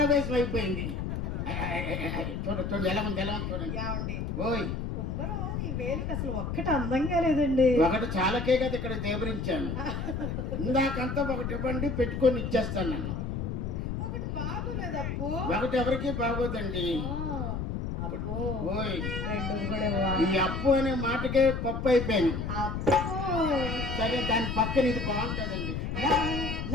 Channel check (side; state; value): left; noise; rumble, 3 dB below the sound